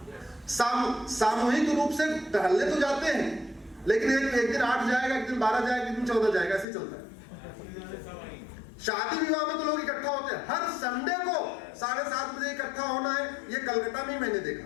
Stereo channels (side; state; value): right; drops out; at 6.7 s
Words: सामूहिक रूप से टहलने तो जाते हैं, लेकिन एक दिन 8 जाएगा, एक दिन 12 जाएगा, एक दिन 14 जाएगा, ऐसे चलता है। शादी विवाह में तो लोग इकट्ठा होते हैं। हर संडे को 7:30 बजे इकट्ठा होना है, ये कलकत्ता में मैंने देखा।